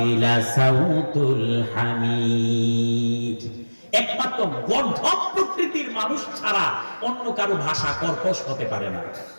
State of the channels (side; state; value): both; inverted; correlation -1.00